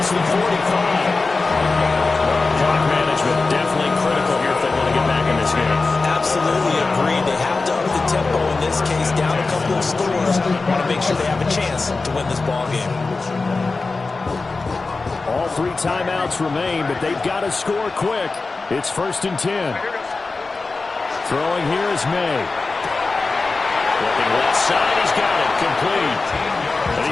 the 45. Clock management definitely critical here if they want to get back in this game. Absolutely agreed. They have to up the tempo in this case, down a couple of scores. Want to make sure they have a chance to win this ball game. All 3 timeouts remain, but they've got to score quick. It's 1st and 10. Throwing here is May. Looking left side, he's got it, complete. And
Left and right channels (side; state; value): right; quieter; 3.8 dB